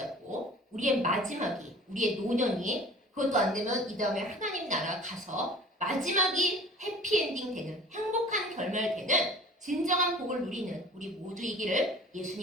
우리의 마지막이, 우리의 노년이 그것도 안 되면 이 다음에 하나님 나라 가서 마지막이 해피엔딩 되는 행복한 결말 되는 진정한 복을 누리는 우리 모두이기를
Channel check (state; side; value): normal; both; correlation 0.45